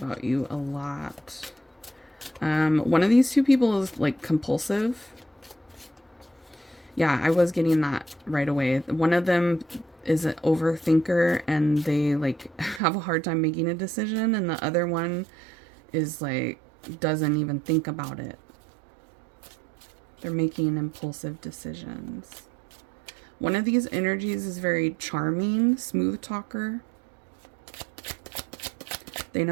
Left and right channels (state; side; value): drops out; left; at 12.8 s